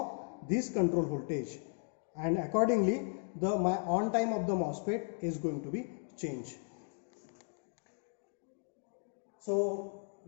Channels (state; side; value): silent; right; 54 dB below the other